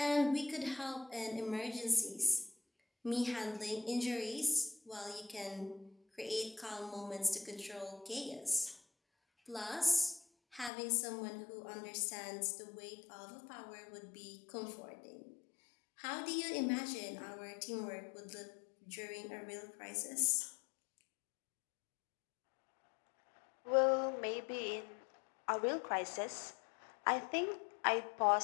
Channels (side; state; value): right; drops out; at 10.7 s